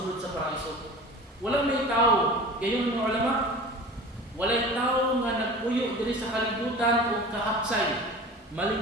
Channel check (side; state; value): both; normal; correlation 0.38